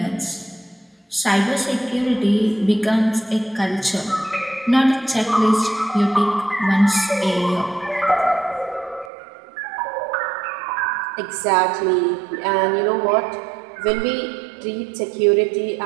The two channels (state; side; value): drops out; left; at 9.1 s